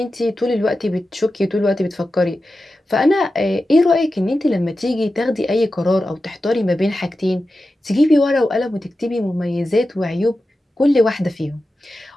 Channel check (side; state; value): both; normal; correlation 0.92